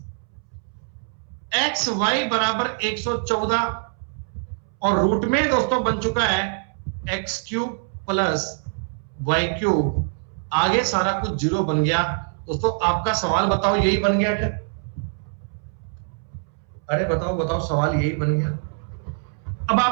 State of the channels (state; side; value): silent; left; 63 dB below the other